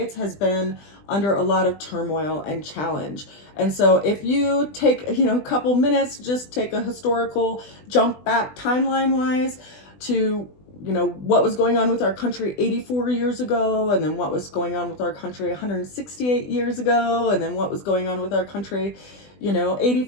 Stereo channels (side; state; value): right; late; 20 ms